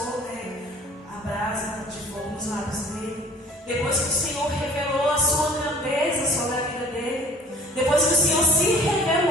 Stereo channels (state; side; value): normal; both; correlation 0.50